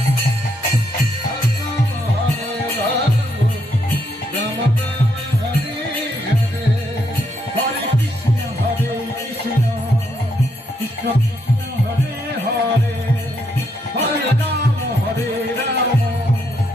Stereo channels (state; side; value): normal; both; correlation 0.76